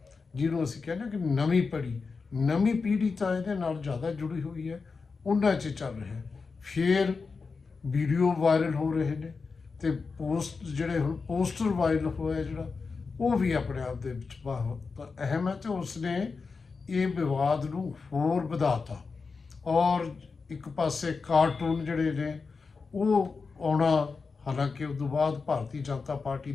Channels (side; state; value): right; quieter; 4.7 dB